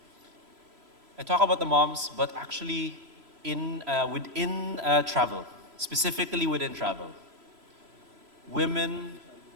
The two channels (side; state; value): left; late; 3.0 ms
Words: I talk about the moms, but actually within travel, specifically within travel, women